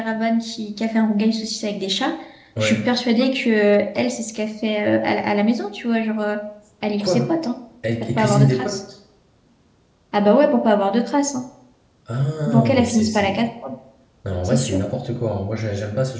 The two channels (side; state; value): both; identical; correlation 1.00